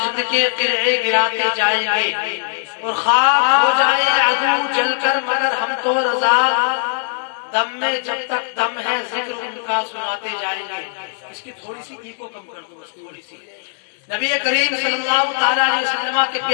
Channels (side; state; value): right; silent; digital silence